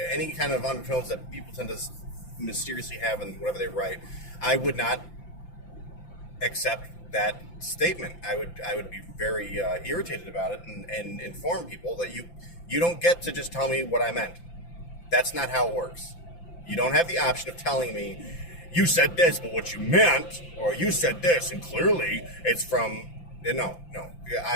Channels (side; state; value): right; late; 5.8 ms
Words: any kind of undertones that people tend to mysteriously have in whatever they write, I would not accept that statement. I would be very irritated about it and inform people that you don't get to just tell me what I meant. That's not how it works. You don't have the option of telling me, you said this, but what you meant, or you said this, and clearly it's from... No.